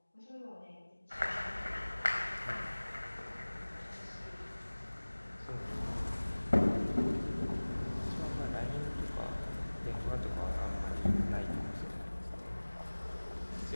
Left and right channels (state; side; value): inverted; both; correlation -1.00